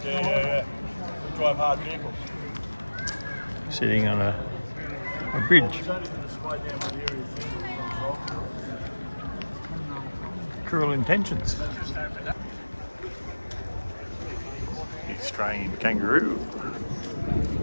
Yeah. We drive hard vehicles. Sitting on a bridge. Cruel intentions. Australian kangaroo.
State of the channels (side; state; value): both; inverted; correlation -1.00